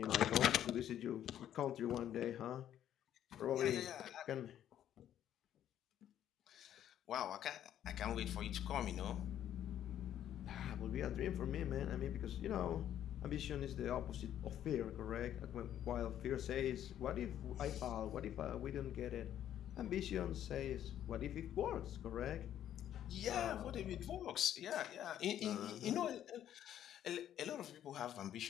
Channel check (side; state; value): right; quieter; 10.9 dB